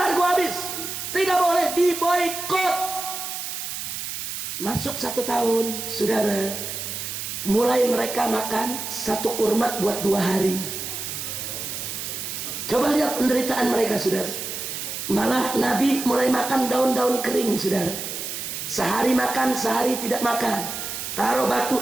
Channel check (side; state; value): right; noise; hiss, 6 dB below the sound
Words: habis, tidak boleh, diboikot. Masuk 1 tahun, saudara, mulai mereka makan 1 kurma buat 2 hari. Coba lihat penderitaan mereka, saudara. Malah Nabi mulai makan daun-daun kering, saudara. Sehari makan, sehari tidak makan. Taruh